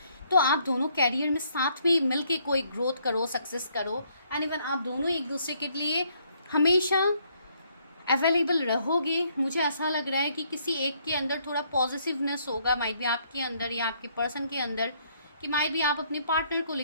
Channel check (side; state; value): both; inverted; correlation -0.69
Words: तो आप दोनों कैरियर में साथ में मिलके कोई ग्रोथ करो, सक्सेस करो एंड इवन आप दोनों एक दूसरे के लिए हमेशा अवेलेबल रहोगे। मुझे ऐसा लग रहा है कि किसी एक के अंदर थोड़ा पॉजिटिवनेस होगा, माइट भी आपके अंदर या आपके पर्सन के अंदर, कि माइट भी आप अपने पार्टनर को